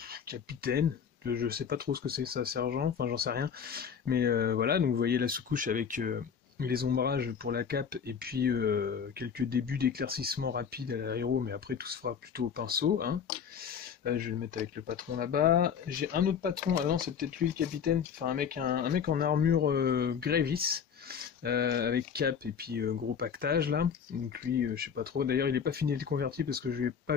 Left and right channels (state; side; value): quieter; right; 7.2 dB